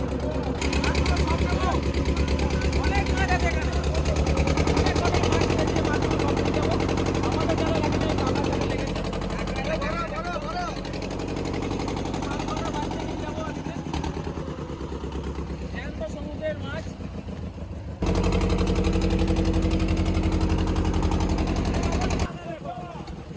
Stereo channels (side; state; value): both; identical; correlation 1.00